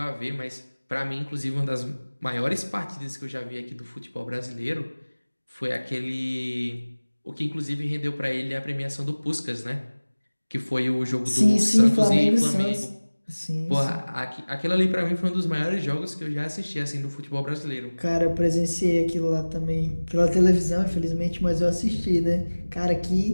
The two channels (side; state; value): both; inverted; correlation -1.00